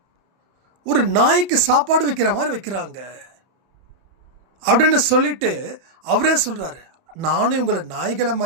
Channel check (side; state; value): left; late; 31 ms